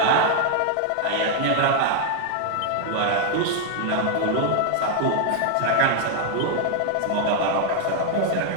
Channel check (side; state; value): both; different; correlation 0.00